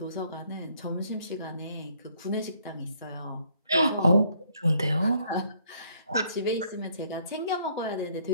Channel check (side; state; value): both; inverted; correlation -0.66